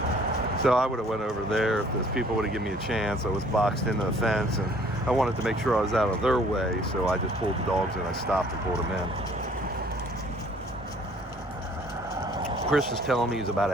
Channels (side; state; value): both; normal; correlation 0.57